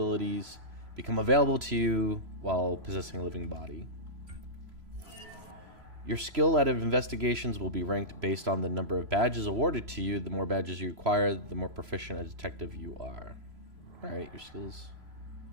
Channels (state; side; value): late; left; 3.0 ms